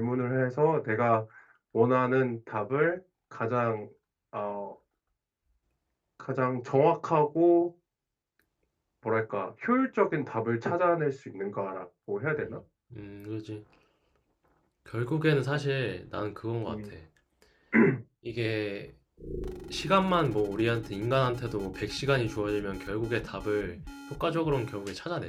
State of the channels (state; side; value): identical; both; correlation 1.00